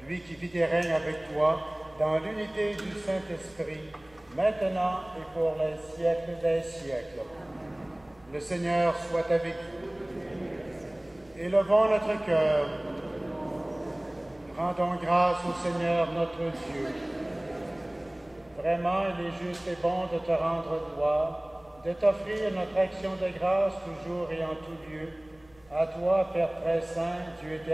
lui qui vit et règne avec toi dans l'unité du Saint-Esprit, maintenant et pour les siècles des siècles. Le Seigneur soit avec vous. Élevons notre cœur. Rendons grâce au Seigneur notre Dieu. Vraiment, il est juste et bon de te rendre gloire, de t'offrir notre action de grâce toujours et en tout lieu, à toi, Père très saint, Dieu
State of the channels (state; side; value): noise; left; hum, 29 dB below the sound